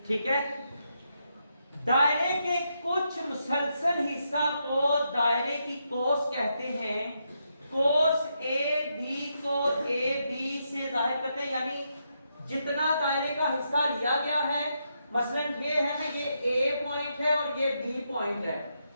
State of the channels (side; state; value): both; inverted; correlation -0.81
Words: ठीक है, दायरे के कुछ मुसलसल हिस्सा को दायरे की कोस कहते हैं। कोस ए बी को ए बी से जाहिर करते हैं, यानी जितना दायरे का हिस्सा लिया गया है, मसलन ये है ना, ये ए पॉइंट है और ये बी पॉइंट है,